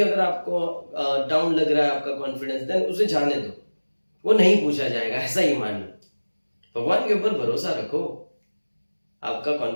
अगर आपको डाउन लग रहा है आपका कॉन्फिडेंस, देन उसे जाने दो, वो नहीं पूछा जाएगा, ऐसा ही मान लो। भगवान के ऊपर भरोसा रखो, आपका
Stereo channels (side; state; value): both; inverted; correlation -1.00